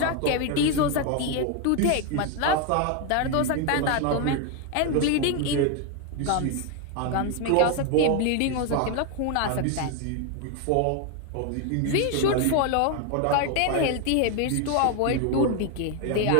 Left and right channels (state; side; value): different; both; correlation 0.01